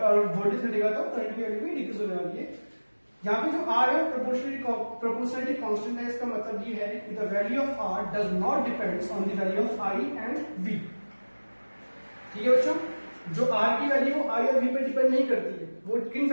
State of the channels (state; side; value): inverted; both; correlation -1.00